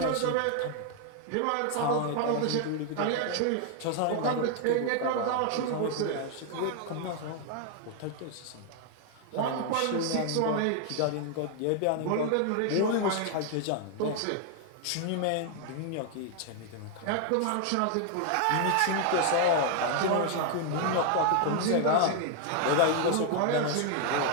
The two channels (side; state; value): both; different; correlation 0.00